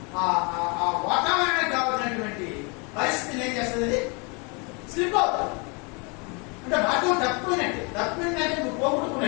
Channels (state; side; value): quieter; right; 32.0 dB